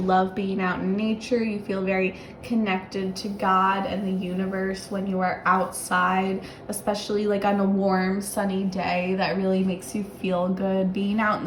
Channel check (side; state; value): both; identical; correlation 1.00